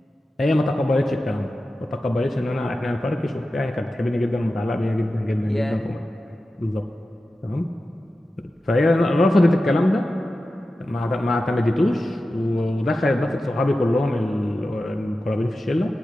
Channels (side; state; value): both; normal; correlation 0.93